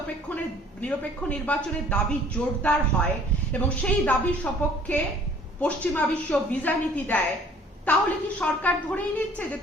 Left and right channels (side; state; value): both; normal; correlation 0.54